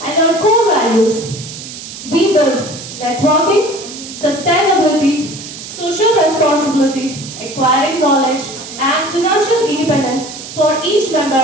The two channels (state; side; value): noise; right; hiss, 12 dB below the sound